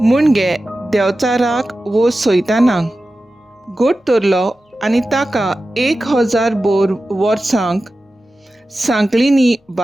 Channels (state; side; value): normal; both; correlation 0.94